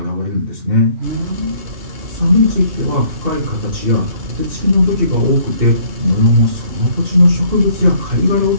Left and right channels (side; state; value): left; late; 2.7 ms